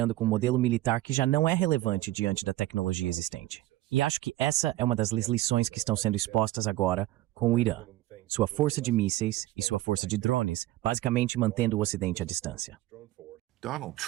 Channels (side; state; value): left; quieter; 16.4 dB